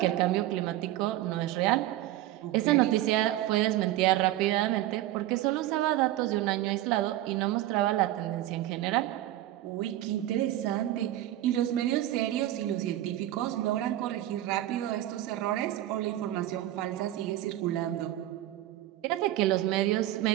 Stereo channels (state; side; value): quieter; left; 14.4 dB